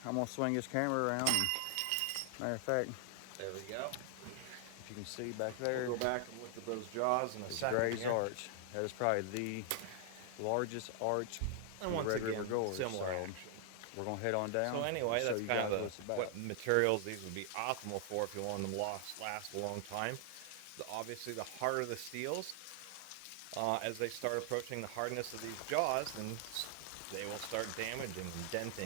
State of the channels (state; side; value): different; both; correlation 0.00